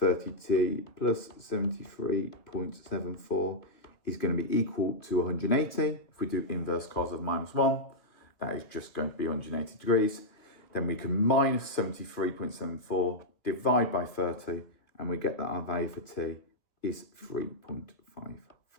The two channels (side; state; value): right; late; 2.3 ms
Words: plus 73.74 is going to be equal to 180. If we do inverse cos of minus 1, that is just going to be 180 degrees. Then we can minus 73.74, divide by 30, and we get that our value for t is